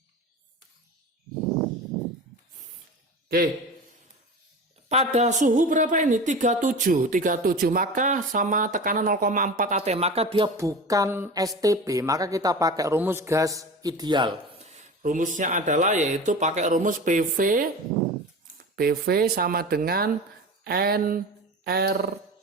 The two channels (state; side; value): normal; both; correlation 0.32